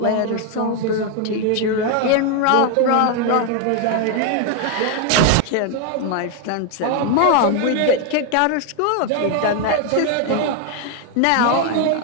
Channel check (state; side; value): different; both; correlation 0.01